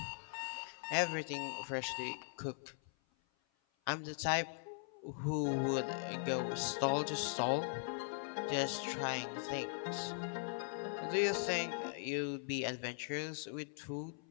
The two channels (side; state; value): right; silent; 51 dB below the other